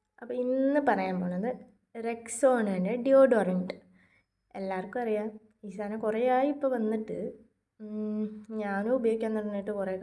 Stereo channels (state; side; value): identical; both; correlation 1.00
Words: അപ്പോൾ ഇന്ന് പറയാൻ പോണത് റെക്സോണൻ്റെ ഡിയോഡറൻറ്റ്. എല്ലാവർക്കും അറിയാം, ഈ സാധനം കുറേ ആയി ഇപ്പോൾ വന്നിട്ട്. ഞാനും ഉപയോഗിക്കാൻ തുടങ്ങിയിട്ട് കുറേ